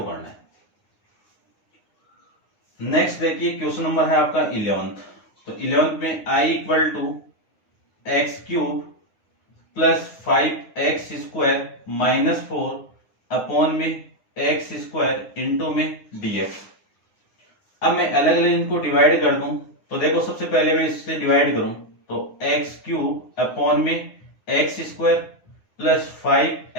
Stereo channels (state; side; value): late; right; 9.7 ms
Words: करना है। नेक्स्ट देखिए क्वेश्चन नंबर है आपका 11th। तो 11th में i equal to x cube plus 5x square minus 4 upon में एक्स स्क्वायर इंटू में dx। अब मैं अलग अलग इनको डिवाइड कर दूं, तो देखो सबसे पहले मैं इससे डिवाइड करूं तो एक्स क्यूब अपॉन में x square plus